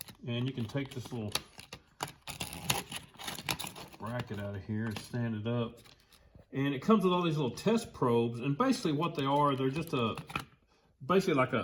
And you can take this little bracket out of here and stand it up. And it comes with all these little test probes. And basically what they are, they're just basically like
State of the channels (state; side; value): identical; both; correlation 1.00